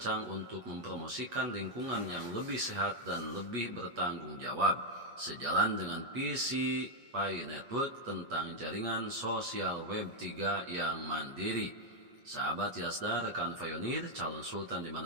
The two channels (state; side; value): late; left; 8.3 ms